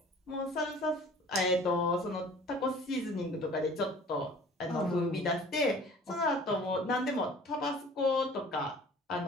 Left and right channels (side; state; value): both; normal; correlation 0.47